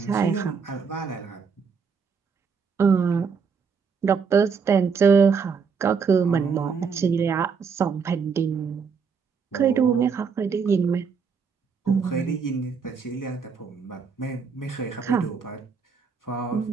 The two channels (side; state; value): left; quieter; 5.8 dB